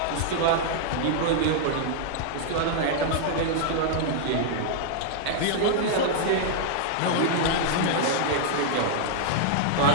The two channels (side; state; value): both; different; correlation -0.01